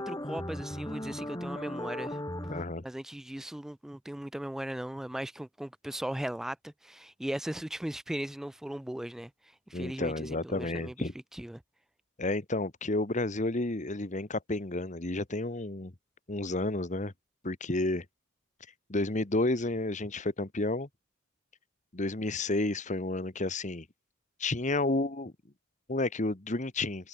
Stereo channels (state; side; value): normal; both; correlation 0.51